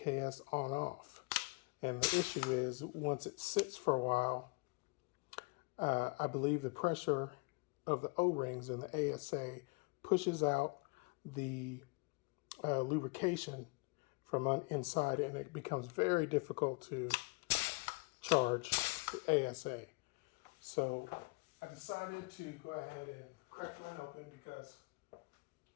on-off. And the issue is, once it sits for a while, I believe the pressure of the O-rings and the ASA pushes out the lubrication from inside, and it becomes very difficult to charge the ASA. So I decided to go ahead and crack mine open because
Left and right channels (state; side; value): quieter; right; 28.8 dB